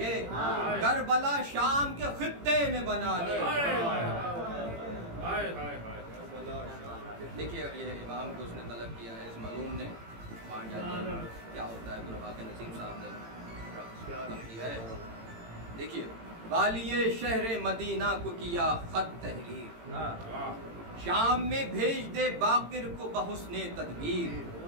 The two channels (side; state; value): left; late; 18 ms